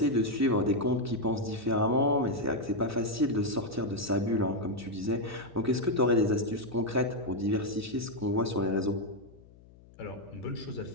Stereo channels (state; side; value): noise; left; hum, 24 dB below the sound